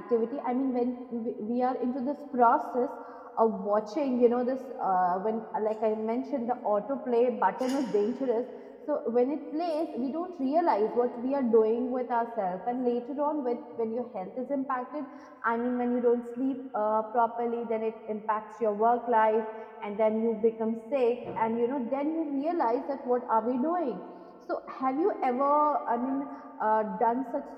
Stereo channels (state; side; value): identical; both; correlation 1.00